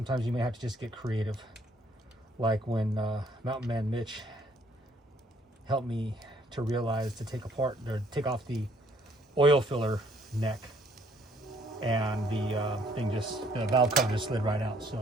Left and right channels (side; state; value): both; normal; correlation 0.64